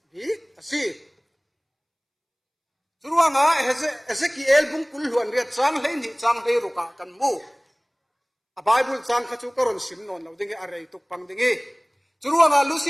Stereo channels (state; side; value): identical; both; correlation 1.00